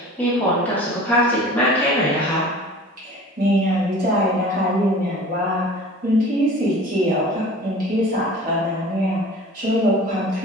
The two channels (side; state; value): both; normal; correlation 0.42